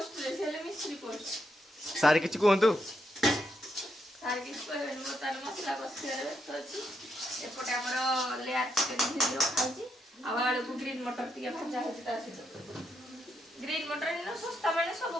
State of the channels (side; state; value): both; normal; correlation 0.80